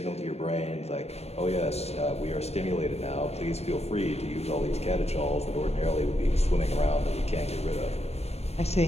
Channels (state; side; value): late; right; 0.31 ms